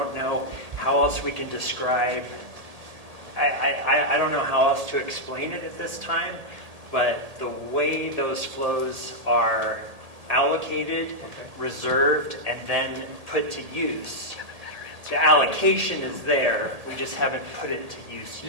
know how else we can describe, I don't know how else to explain it at this time, but the way those flows are allocated, reserved, and then put to use, the allocation is there, we just haven't put it to use. It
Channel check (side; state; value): left; late; 1.8 ms